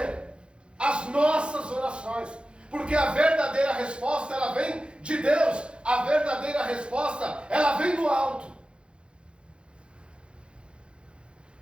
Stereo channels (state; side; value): late; left; 0.056 ms